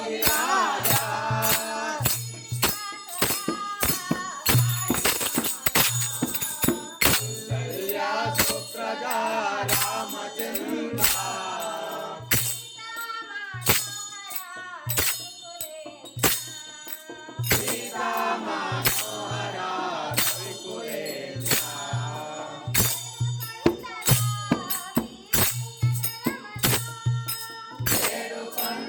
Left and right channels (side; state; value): both; identical; correlation 1.00